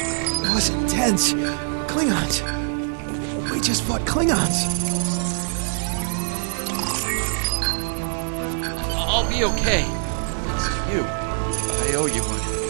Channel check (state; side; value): silent; left; 63 dB below the other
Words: was intense. Klingons. We just fought Klingons. I'll be okay. Thanks to you. I owe you one.